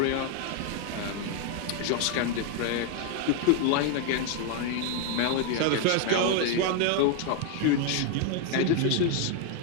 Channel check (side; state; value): both; different; correlation 0.01